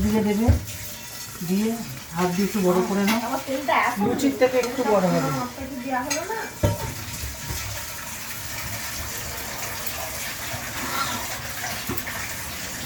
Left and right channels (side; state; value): both; identical; correlation 1.00